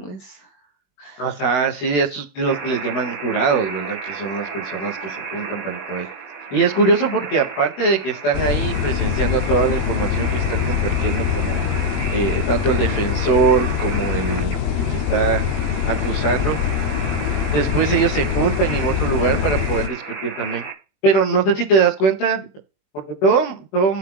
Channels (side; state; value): right; late; 21 ms